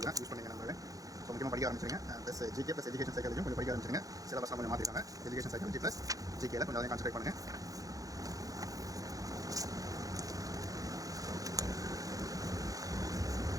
யூஸ் பண்ணிங்க நண்பர்களே. ஸோ முக்கியமாக படிக்க ஆரம்பிச்சிருங்க. ப்ளஸ் ஜிகே ப்ளஸ் எஜுகேஷன் சைக்காலஜியும் கொஞ்சம் படிக்க ஆரம்பிச்சிருங்க. சிலபஸ்லாம் கொஞ்சம் மாற்றிருக்காங்க. எஜுகேஷன் சைக்காலஜி ப்ளஸ் ஜிகேல கொஞ்சம் அதை கான்சன்ட்ரேட் பண்ணுங்கள்.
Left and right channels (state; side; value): late; left; 0.17 ms